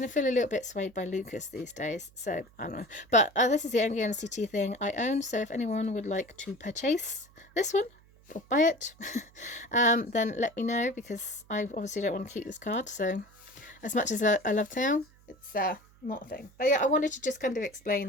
of feel a little bit swayed by Lucas these days, so I don't know. But this is the only NCT thing I own, so if anyone would like to purchase this one or buy it, then let me know, because I obviously don't want to keep this card. So as much as I love Taeyong, it's not a thing. But yeah, I wanted to just kind of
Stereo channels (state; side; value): noise; right; hum, 27 dB below the sound